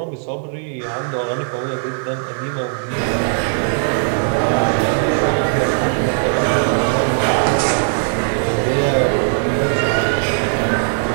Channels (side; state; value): left; silent; digital silence